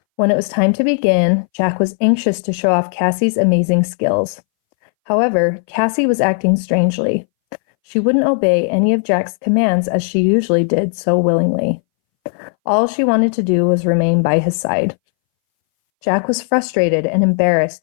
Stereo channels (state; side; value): silent; right; 65 dB below the other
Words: When it was time to begin, Jack was anxious to show off Cassie's amazing skills. However, Cassie was acting strangely. She wouldn't obey any of Jack's commands as she usually did so willingly. All she wanted to do was remain by his side. Jack was frustrated and